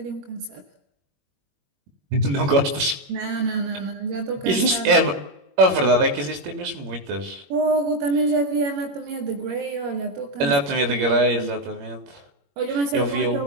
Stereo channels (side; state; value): left; late; 21 ms